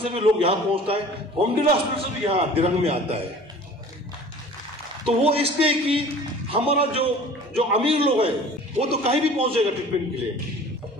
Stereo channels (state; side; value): normal; both; correlation 0.44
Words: भी लोग यहाँ पहुंचता है, बोमडिला हॉस्पिटल से भी यहाँ दिनांक में आता है। तो वो इसलिए कि हमारा जो अमीर लोग हैं वो तो कहीं भी पहुंच जाएगा ट्रीटमेंट के लिए,